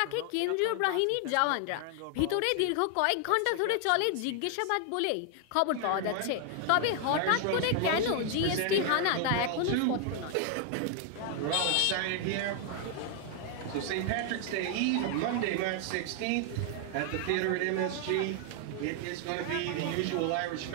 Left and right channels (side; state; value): both; different; correlation 0.00